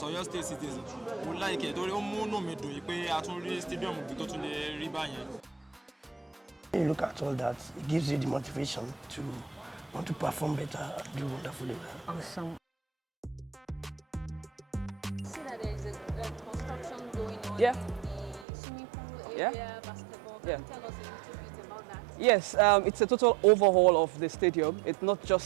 Ọ̀yọ́ state citizen. Mo like ẹ̀ torí ó mú inú mi dùn pé a tún rí stadium tó tún lè rí báyẹn. When you look at all that, it gives you the motivation to want to perform better and do wonderfully well. Awesome. See that there is a construction going on in the swimming pool area, basketball. Can you tell us a little bit about that? Yes, it's a total overhaul of the stadium. It's not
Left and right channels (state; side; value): drops out; left; at 18.4 s